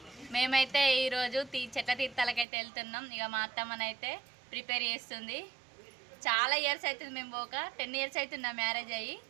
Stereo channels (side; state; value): left; drops out; at 2.5 s